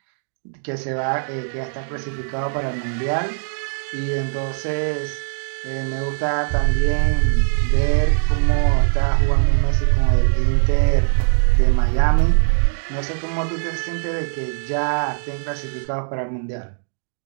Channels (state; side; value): silent; left; digital silence